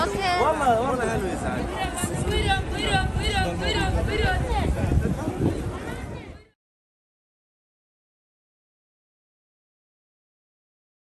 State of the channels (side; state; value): both; identical; correlation 1.00